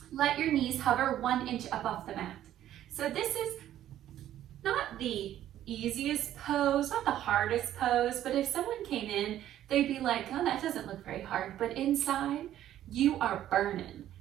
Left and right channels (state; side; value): quieter; left; 12.1 dB